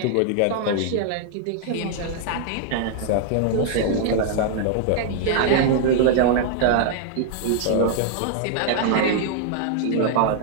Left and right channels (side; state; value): both; different; correlation -0.01